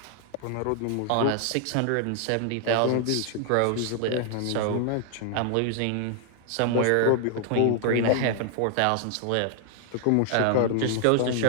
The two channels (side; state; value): both; different; correlation 0.00